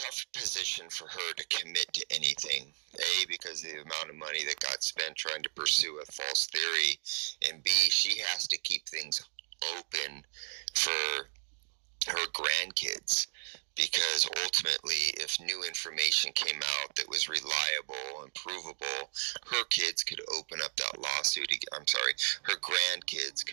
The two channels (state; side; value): silent; left; digital silence